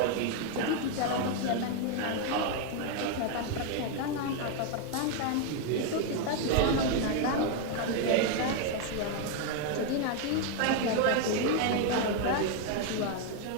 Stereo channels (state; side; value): different; both; correlation 0.01